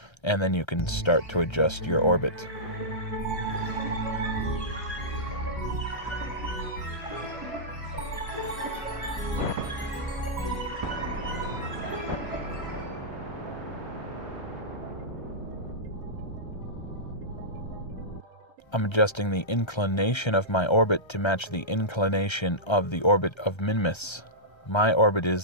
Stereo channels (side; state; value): right; late; 1.3 ms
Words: and then you can start to adjust your orbit. I'm adjusting the inclination of my orbit to match the inclination of the orbit of Minimus. My orbit